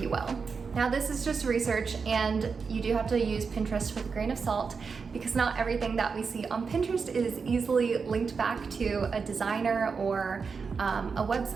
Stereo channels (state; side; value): quieter; left; 5.3 dB